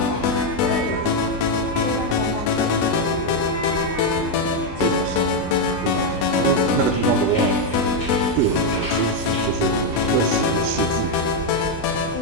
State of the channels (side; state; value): both; normal; correlation 0.02